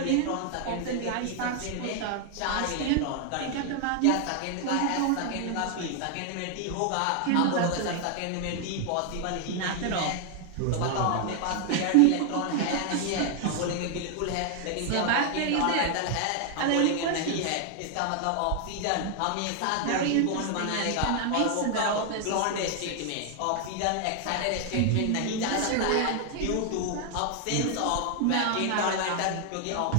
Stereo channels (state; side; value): different; both; correlation 0.00